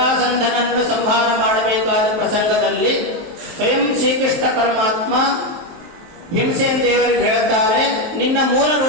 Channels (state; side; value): late; left; 23 ms